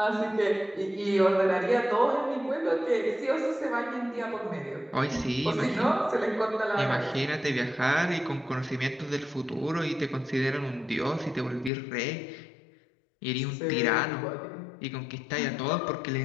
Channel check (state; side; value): drops out; right; at 11.7 s